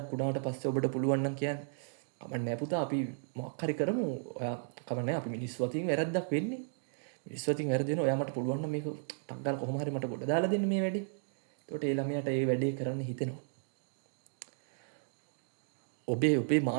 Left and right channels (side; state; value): left; silent; digital silence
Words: වුණාට පස්සේ ඔබට පුළුවන් නම් කියන්නේ කමන්නේ පුතා අපි මොකක් හරි කරමු. ඔයා කමන්නේ අපි මිනිස්සු අතින් වැරද්දක් වෙන්නේ. මිනිස්සු අතින් වැරදි වෙනවා. ඔයා මට පුළුවන් නම් මේක ටක් ගාලා කොහොම හරි මට ගොඩ දාලා දෙන්න මේ වැඩේ. එතකොට ඒ ළමයාට ඒ වැඩේ කරන්න හිතෙනවා. ඔබේ